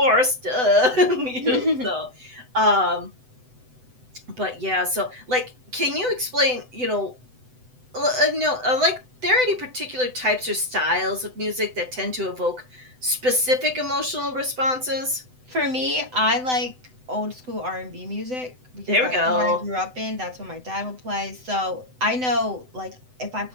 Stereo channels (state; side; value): late; left; 7.9 ms